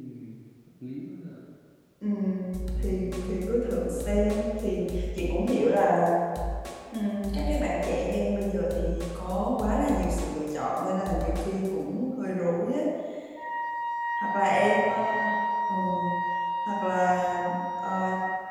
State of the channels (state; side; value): identical; both; correlation 1.00